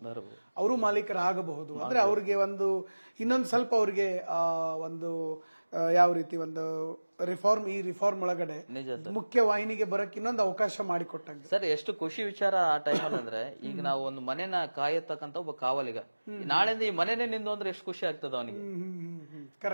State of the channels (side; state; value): both; inverted; correlation -1.00